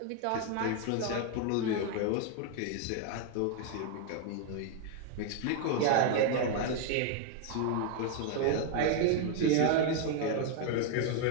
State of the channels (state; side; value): different; both; correlation 0.01